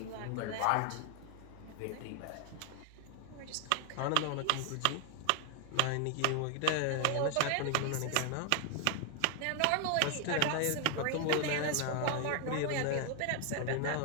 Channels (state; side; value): different; both; correlation 0.00